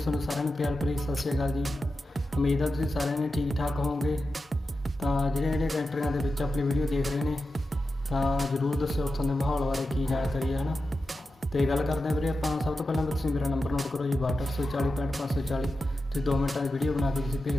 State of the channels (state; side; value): normal; both; correlation 0.91